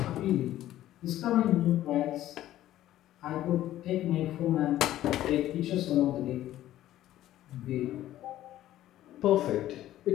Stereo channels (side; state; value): right; quieter; 13.6 dB